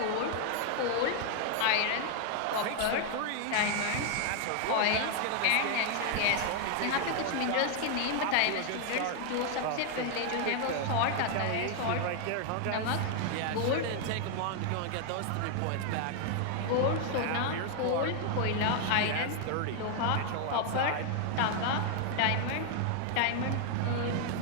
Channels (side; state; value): both; different; correlation 0.00